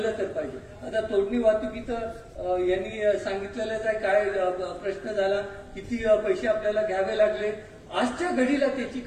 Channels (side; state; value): both; identical; correlation 1.00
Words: तर पाहिजे. आता तोडणी वाहतुकीचं यांनी सांगितलेलंच आहे, काय प्रश्न झाला, किती पैसे आपल्याला घ्यावे लागले. आजच्या घडीला त्याची